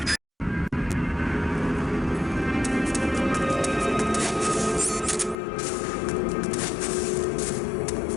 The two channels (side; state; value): right; drops out; at 5.4 s